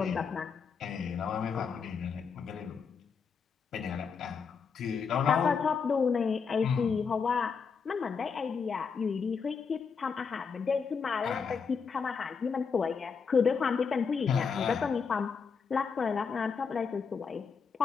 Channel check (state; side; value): quieter; right; 5.8 dB